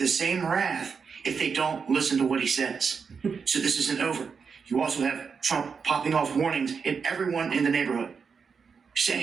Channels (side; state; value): left; quieter; 5.8 dB